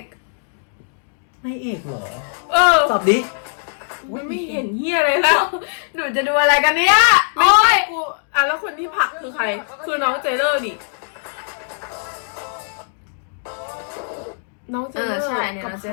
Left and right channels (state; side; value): silent; right; digital silence